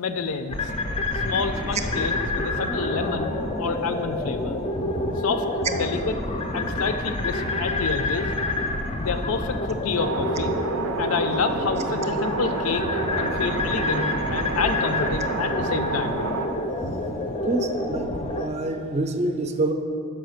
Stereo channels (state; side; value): normal; both; correlation 0.08